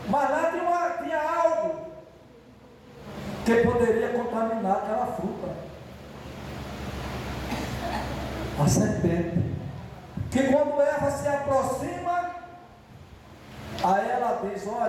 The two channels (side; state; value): both; identical; correlation 1.00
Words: mas lá tinha algo que poderia contaminar aquela fruta. A serpente, que quando Eva se aproxima, aí ela diz,